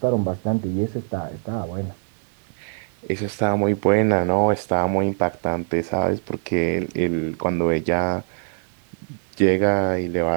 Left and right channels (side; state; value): left; silent; 63 dB below the other